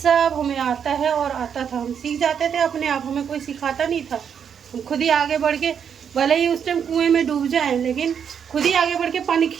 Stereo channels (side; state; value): left; quieter; 7.7 dB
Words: हमें आता है और आता था। हम सीख जाते थे अपने आप, हमें कोई सिखाता नहीं था। हम खुद ही आगे बढ़ के, भले ही उस टाइम कुएं में डूब जाएं, लेकिन खुद ही आगे बढ़ के पानी